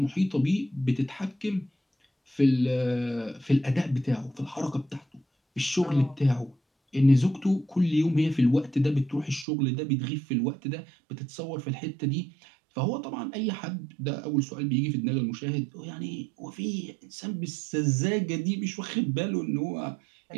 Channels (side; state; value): left; drops out; at 9.5 s